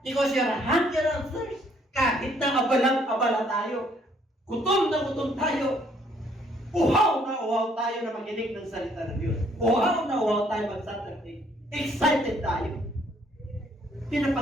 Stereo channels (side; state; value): both; normal; correlation 0.65